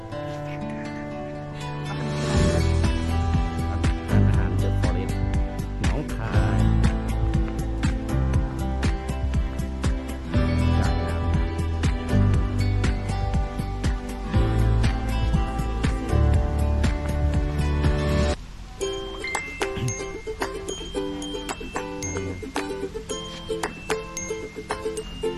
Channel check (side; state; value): both; identical; correlation 1.00